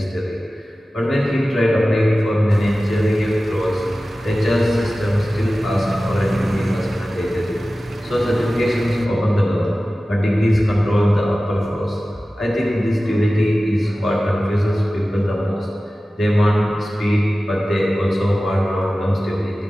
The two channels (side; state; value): both; normal; correlation 0.96